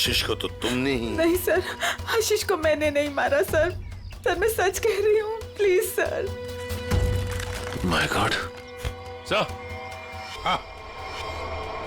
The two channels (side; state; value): both; identical; correlation 1.00